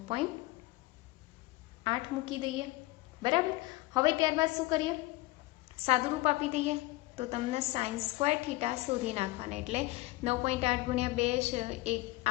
મૂકી દઈએ, બરાબર. હવે ત્યારબાદ શું કરીએ? સાદુરૂપ આપી દઈએ. તો તમને સાઇન સ્ક્વેર થીટા શોધી નાખવાના. એટલે 9.8 ગુણ્યા 2 છે એ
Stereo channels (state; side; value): quieter; right; 20.4 dB